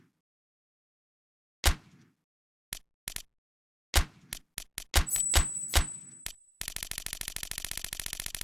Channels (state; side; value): normal; both; correlation 0.92